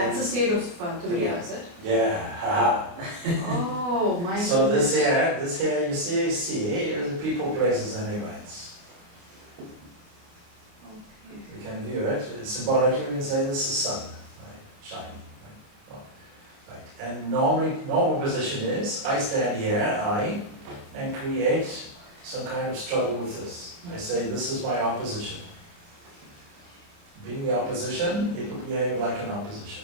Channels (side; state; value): left; late; 28 ms